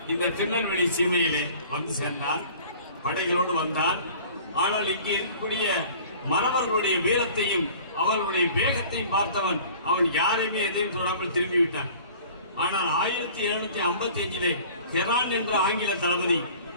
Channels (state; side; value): inverted; both; correlation -0.46